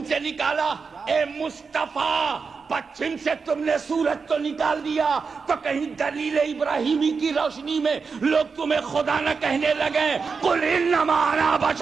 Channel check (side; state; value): left; quieter; 5.1 dB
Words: سے نکالا۔ اے مصطفیٰ پچھم سے تم نے سورج تو نکال دیا تو کہیں دلیل ابراہیمی کی روشنی میں لوگ تمہیں خدا نہ کہنے لگے قل انما انا